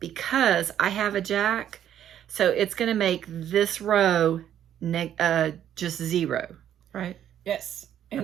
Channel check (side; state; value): left; quieter; 10.4 dB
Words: I have a jack. So it's going to make this row just 0, right? Yes.